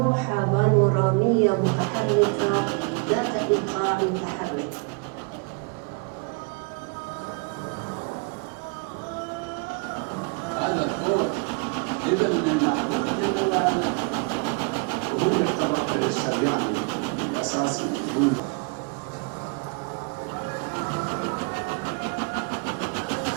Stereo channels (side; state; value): left; quieter; 33.2 dB